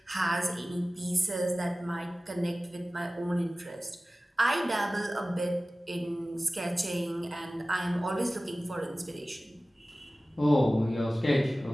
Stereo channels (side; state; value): both; normal; correlation 0.97